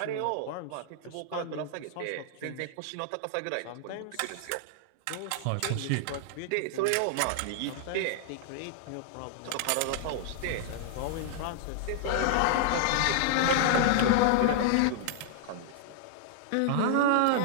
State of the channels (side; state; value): both; different; correlation -0.01